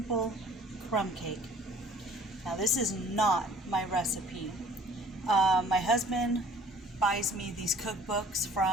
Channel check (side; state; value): both; normal; correlation 0.52